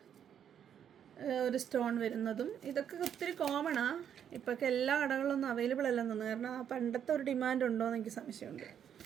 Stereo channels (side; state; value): left; quieter; 8.9 dB